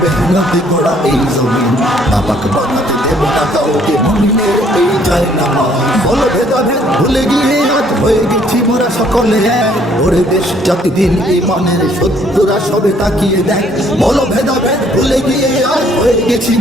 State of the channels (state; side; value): normal; both; correlation 0.63